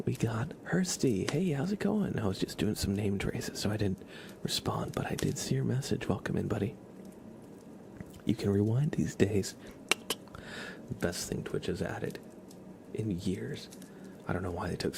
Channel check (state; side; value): identical; both; correlation 1.00